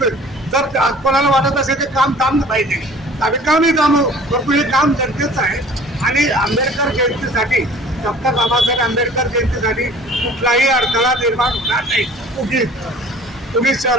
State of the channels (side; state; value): both; normal; correlation 0.47